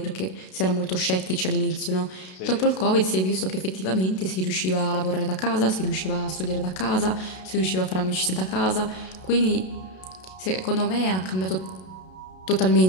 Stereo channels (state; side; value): late; right; 32 ms